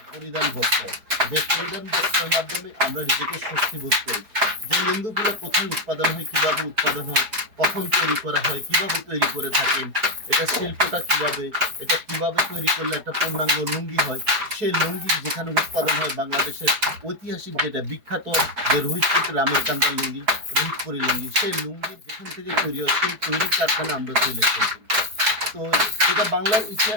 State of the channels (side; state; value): left; late; 4.7 ms